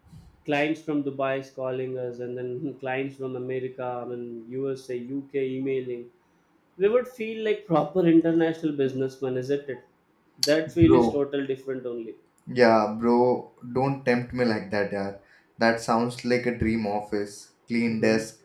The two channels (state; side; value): identical; both; correlation 1.00